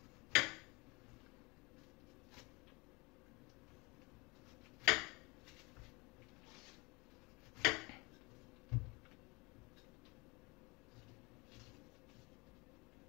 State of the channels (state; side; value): quieter; right; 26.8 dB